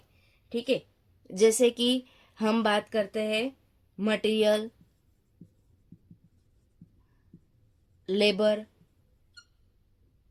ठीक है। जैसे कि हम बात करते हैं मटेरियल, लेबर।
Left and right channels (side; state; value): both; identical; correlation 1.00